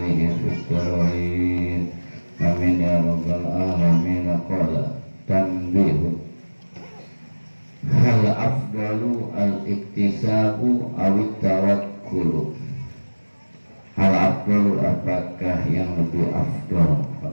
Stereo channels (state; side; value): inverted; both; correlation -1.00